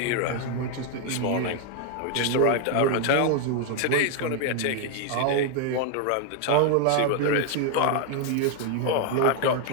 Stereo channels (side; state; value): both; different; correlation 0.01